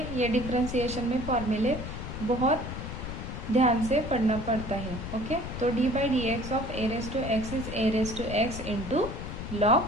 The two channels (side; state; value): left; noise; rumble, 7 dB below the sound